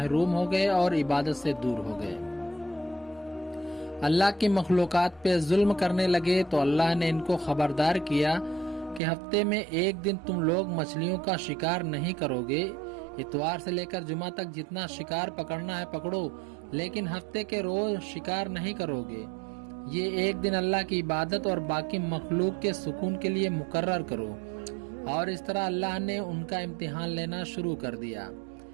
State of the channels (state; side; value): drops out; left; at 9.0 s